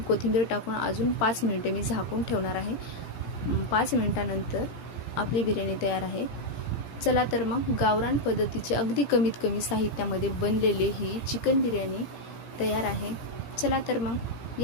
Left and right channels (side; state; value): right; late; 18 ms